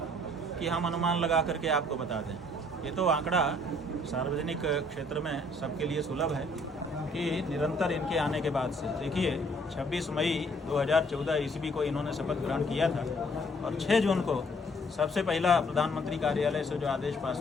कि हम अनुमान लगा करके आपको बता दें। ये तो आंकड़ा सार्वजनिक क्षेत्र में सबके लिए सुलभ है कि निरंतर इनके आने के बाद से, देखिए 26 मई 2014 ईस्वी को इन्होंने शपथ ग्रहण किया था और 6 जून को सबसे पहला प्रधानमंत्री कार्यालय से जो आदेश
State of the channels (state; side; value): normal; both; correlation 0.62